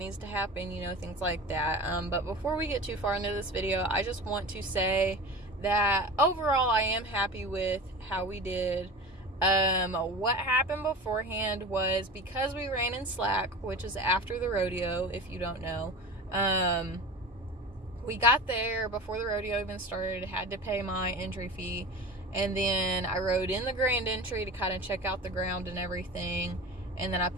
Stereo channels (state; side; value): normal; both; correlation 0.33